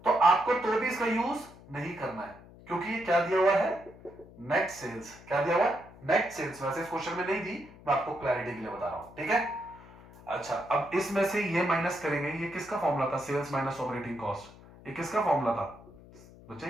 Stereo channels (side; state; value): left; noise; hum, 21 dB below the sound